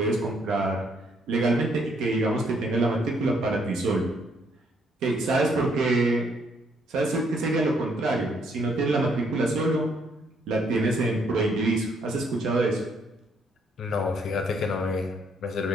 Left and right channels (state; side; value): normal; both; correlation 0.69